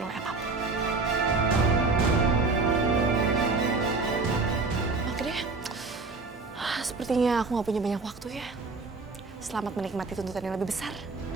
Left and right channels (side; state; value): left; quieter; 3.9 dB